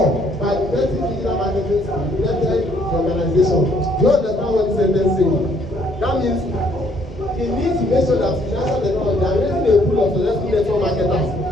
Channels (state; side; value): normal; both; correlation 0.66